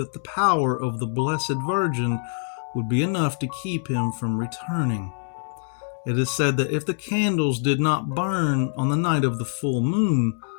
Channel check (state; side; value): silent; right; digital silence